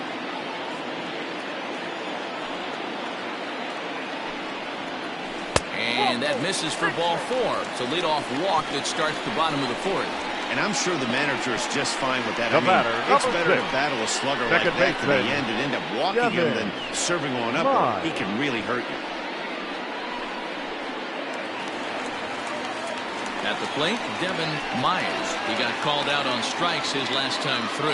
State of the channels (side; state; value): both; identical; correlation 1.00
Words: And that misses for ball 4. It's a leadoff walk that starts the bottom of the 4th. And I'm sure the manager is just fine with that. The batter, it's number better 6. to battle a slugger Second like that to the baseman. end and end up walking him than serving on up. Or he can really hurt you. At the plate, Devin Myers. He got called out on strikes his last time